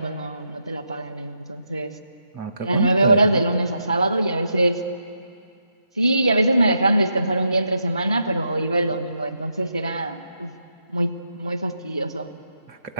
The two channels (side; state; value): both; inverted; correlation -0.82